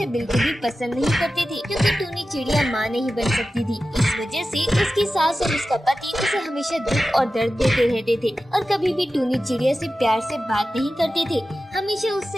बिल्कुल भी पसंद नहीं करते थे, क्योंकि टूनी चिड़िया माँ नहीं बन सकती थी। इस वजह से उसकी सास और उसका पति उसे हमेशा दुख और दर्द देते रहते थे और कभी भी टूनी चिड़िया से प्यार से बात नहीं करते थे, हमेशा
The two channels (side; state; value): both; normal; correlation 0.94